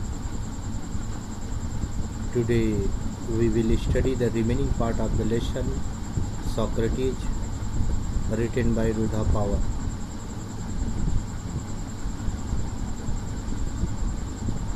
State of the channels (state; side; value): identical; both; correlation 1.00